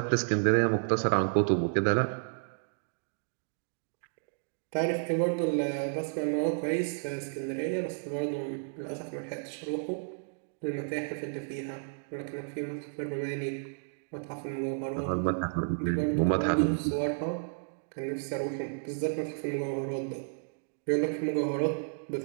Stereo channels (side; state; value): left; silent; digital silence